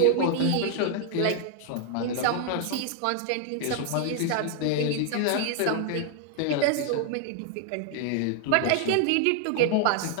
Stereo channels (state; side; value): different; both; correlation 0.00